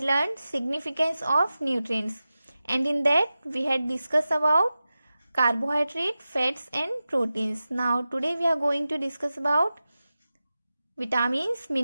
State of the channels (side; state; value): both; inverted; correlation -0.94